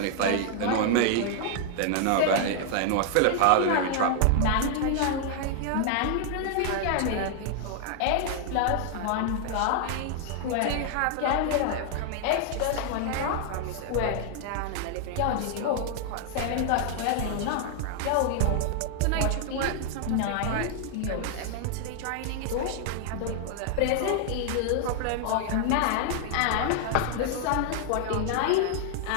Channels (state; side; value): different; both; correlation 0.00